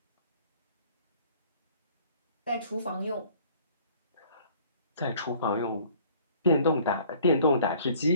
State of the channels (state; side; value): inverted; both; correlation -0.54